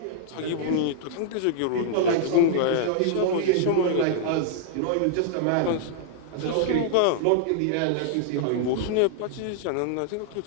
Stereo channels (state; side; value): different; both; correlation -0.01